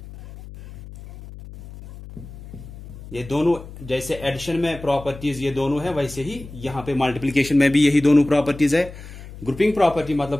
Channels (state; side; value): noise; left; hum, 15 dB below the sound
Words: ये दोनों जैसे एडिशन में प्रॉपर्टीज ये दोनों है, वैसे ही यहां पे मल्टीप्लिकेशन में भी यही दोनों प्रॉपर्टीज है। ग्रुपिंग प्रॉपर्टी